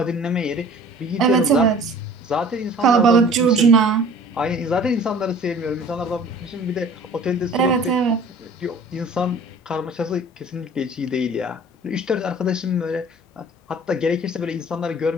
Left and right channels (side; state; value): both; normal; correlation 0.47